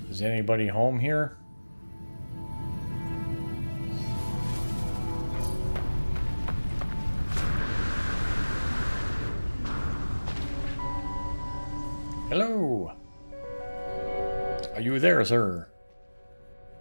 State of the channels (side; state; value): both; inverted; correlation -1.00